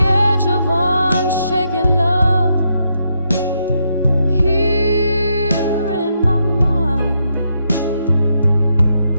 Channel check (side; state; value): both; inverted; correlation -0.79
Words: of unshaken love, here in my mind,